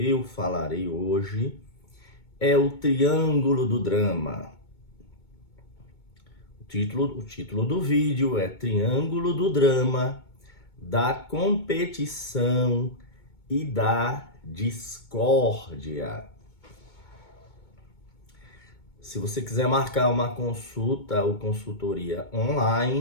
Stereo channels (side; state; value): right; late; 2.2 ms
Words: falarei hoje, é o Triângulo do Drama. O título do vídeo é Triângulo do Drama, da competição e da discórdia. Se você quiser marcar uma consulta ou consultoria